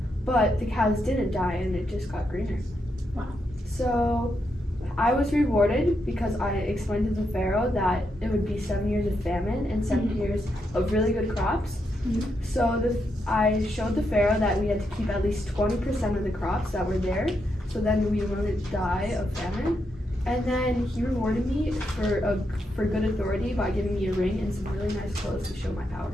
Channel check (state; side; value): normal; both; correlation 0.82